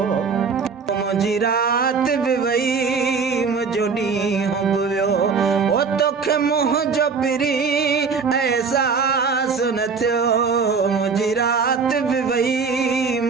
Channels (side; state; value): left; quieter; 5.3 dB